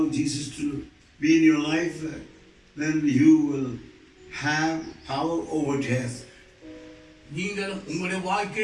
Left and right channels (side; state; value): both; identical; correlation 1.00